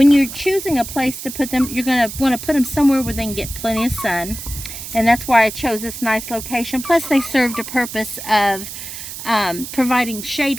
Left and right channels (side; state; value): right; noise; hiss, 10 dB below the sound